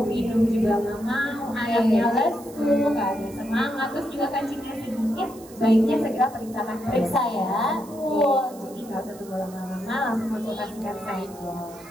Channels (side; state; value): right; noise; hiss, 21 dB below the sound